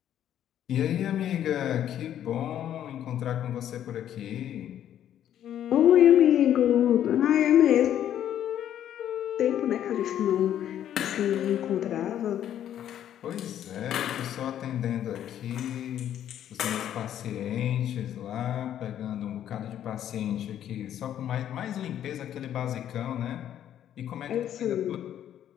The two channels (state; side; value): quieter; right; 10.7 dB